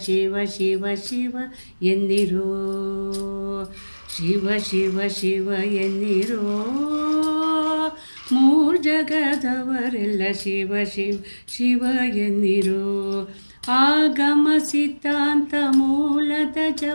ಶಿವ ಶಿವ ಶಿವ ಎನ್ನಿರೋ, ಶಿವ ಶಿವ ಶಿವ ಎನ್ನಿರೋ ಮೂರ್ ಜಗದವರೆಲ್ಲ, ಶಿವ ಶಿವ ಶಿವ ಎನ್ನಿರೋ. ಆಗಮ ಸಿದ್ಧಾಂತ ಮೂಲದ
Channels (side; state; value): both; inverted; correlation -1.00